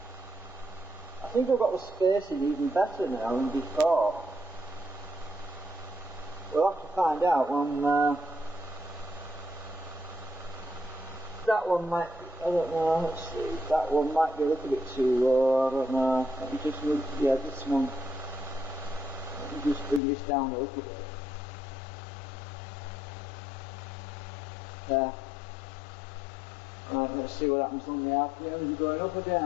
think I've got the spacing even better now than before. We'll have to find out when that one might, I don't know, let's see, that one might be a little bit too low, I don't know. Let me just look, yeah, this one, let me just bring this down a little bit. There. Right, let's see what happens on the RPM. Is it going up or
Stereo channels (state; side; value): drops out; right; at 20.0 s